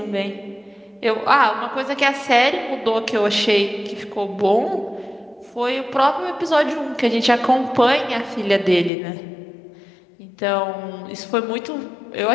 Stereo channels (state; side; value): drops out; right; at 8.9 s